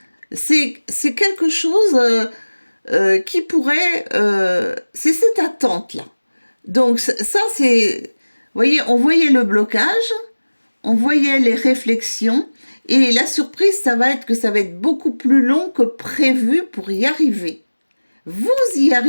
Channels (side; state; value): both; inverted; correlation -1.00